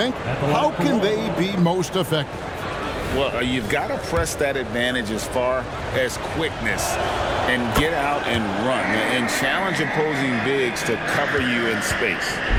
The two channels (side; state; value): both; identical; correlation 1.00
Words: How can they be most effective? Well, you've got to press that advantage as far as quickness and get out and run and challenge opposing bigs to cover you in space.